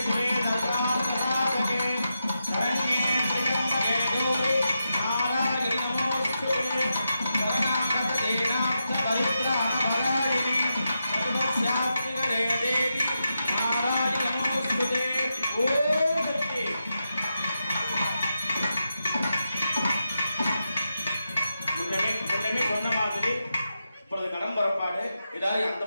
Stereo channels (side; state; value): both; inverted; correlation -0.87